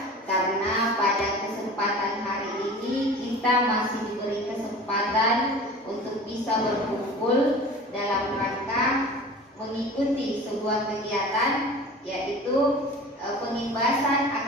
karena pada kesempatan hari ini kita masih diberi kesempatan untuk bisa berkumpul dalam rangka mengikuti sebuah kegiatan, yaitu pengimbasan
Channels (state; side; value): normal; both; correlation 0.39